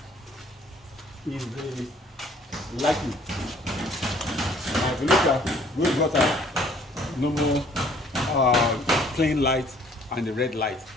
is the lighting. Now if you look at, we've got a normal plain light and the red light,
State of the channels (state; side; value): normal; both; correlation 0.58